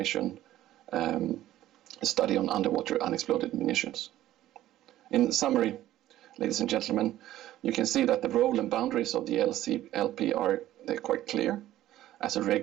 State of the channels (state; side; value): quieter; left; 13.9 dB